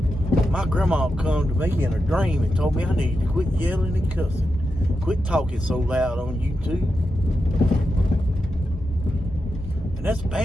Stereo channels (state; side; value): normal; both; correlation 0.88